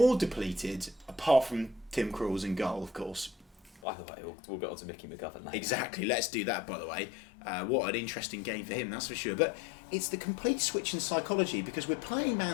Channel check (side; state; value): right; drops out; at 3.8 s